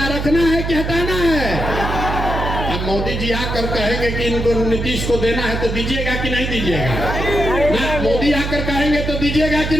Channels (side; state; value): right; noise; hum, 3 dB below the sound